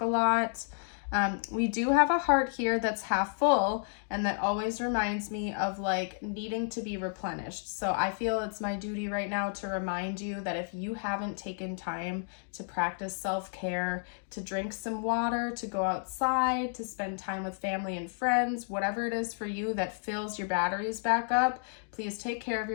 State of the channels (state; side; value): silent; right; 55 dB below the other